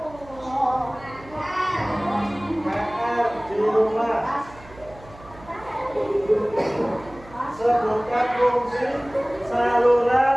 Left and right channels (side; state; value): right; noise; hum, 21 dB below the sound